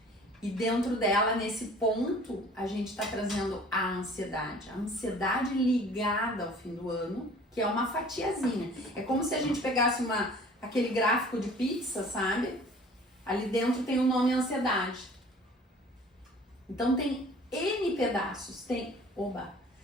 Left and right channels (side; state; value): both; normal; correlation 0.49